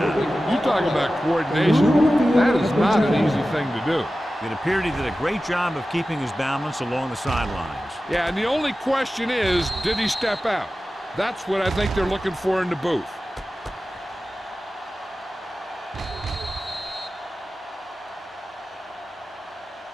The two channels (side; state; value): both; normal; correlation 0.95